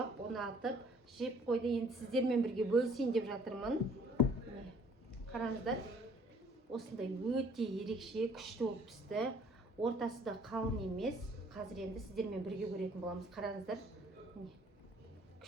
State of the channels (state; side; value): normal; both; correlation 0.58